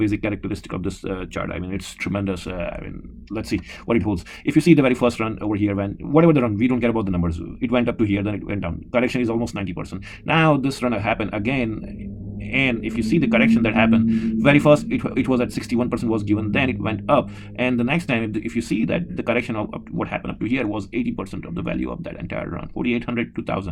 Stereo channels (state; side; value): identical; both; correlation 1.00